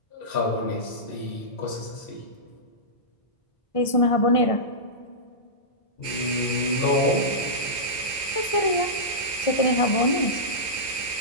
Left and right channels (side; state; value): right; late; 1.5 ms